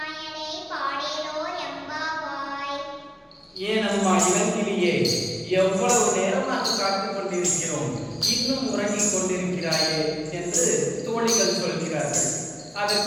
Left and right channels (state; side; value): identical; both; correlation 1.00